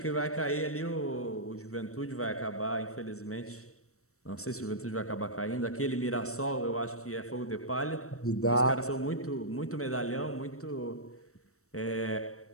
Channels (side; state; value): right; late; 0.64 ms